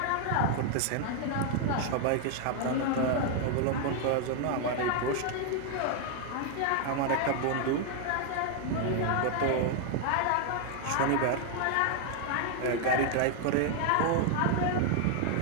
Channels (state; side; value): different; both; correlation 0.00